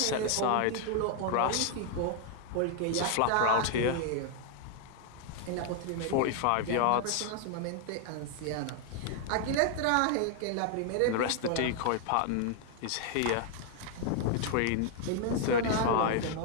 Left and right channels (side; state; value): both; different; correlation 0.00